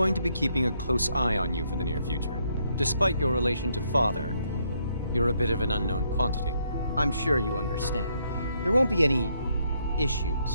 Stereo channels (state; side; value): inverted; both; correlation -0.73